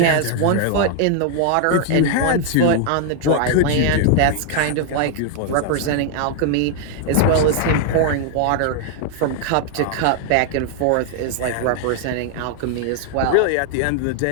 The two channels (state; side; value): different; both; correlation 0.00